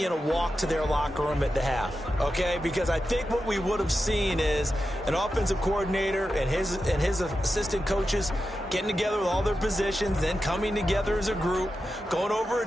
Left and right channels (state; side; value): normal; both; correlation 0.90